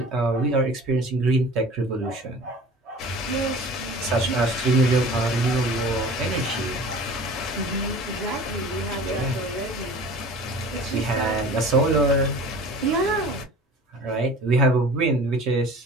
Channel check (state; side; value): normal; both; correlation 0.42